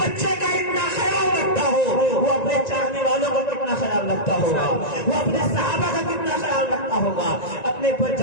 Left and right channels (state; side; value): late; right; 1.9 ms